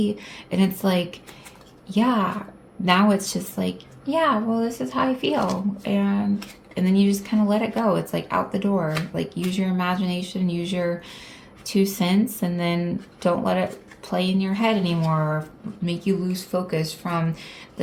And it's like, yeah. Now it's just like, yeah, well, this is how I feel, and then you just kind of let it go. It's like out the door. Like, use your imagination, use your 2 cents, and then don't let it play in your head anymore or make you lose focus from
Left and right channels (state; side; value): identical; both; correlation 1.00